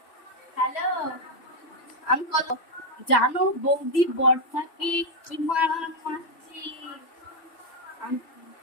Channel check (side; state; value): right; late; 3.0 ms